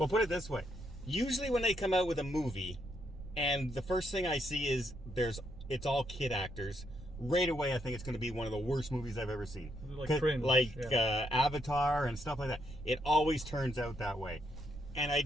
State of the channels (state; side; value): noise; right; rumble, 13 dB below the sound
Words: put it this way. Usually when they come out with a movie, and the first thing I see is it's all kid actors, right away I think it's going to be one of the worst movies I've ever seen. Like cringe. Avatar and stuff like that. It always turns out that way. And I